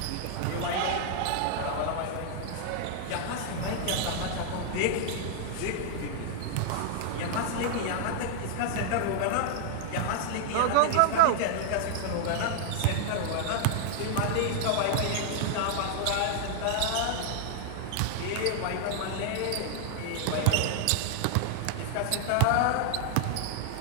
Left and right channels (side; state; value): both; different; correlation 0.00